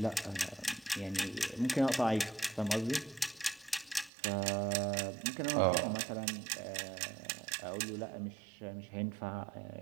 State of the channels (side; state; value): left; drops out; at 4.1 s